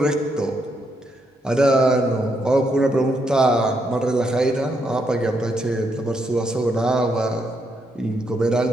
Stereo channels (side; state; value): both; normal; correlation 0.78